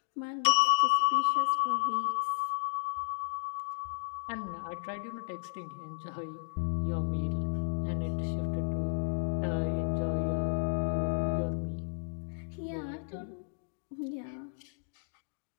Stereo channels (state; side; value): silent; right; digital silence